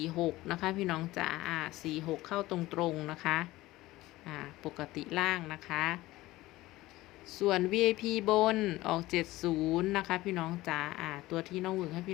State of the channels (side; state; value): right; quieter; 18.0 dB